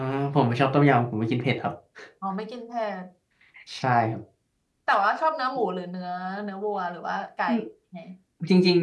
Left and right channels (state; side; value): identical; both; correlation 1.00